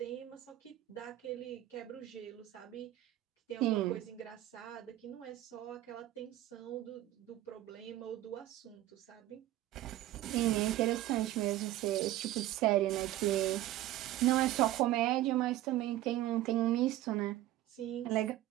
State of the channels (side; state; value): left; quieter; 14.9 dB